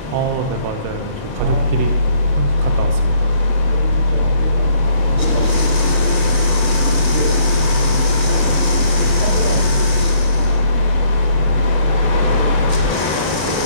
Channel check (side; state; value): left; late; 31 ms